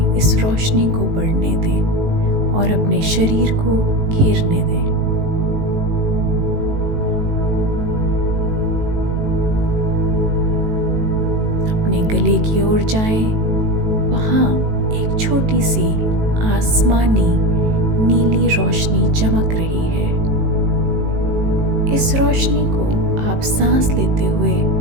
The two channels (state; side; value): late; left; 18 ms